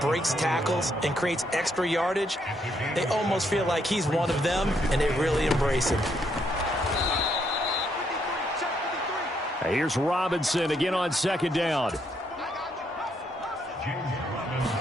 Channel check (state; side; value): normal; both; correlation 0.74